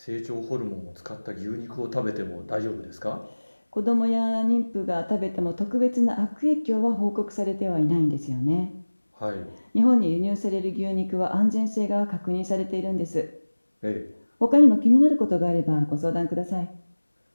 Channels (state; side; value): inverted; both; correlation -1.00